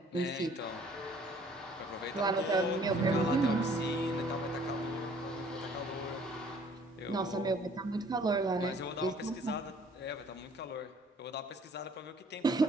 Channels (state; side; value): normal; both; correlation 0.57